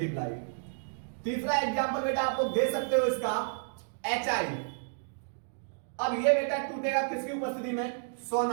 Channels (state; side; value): silent; left; digital silence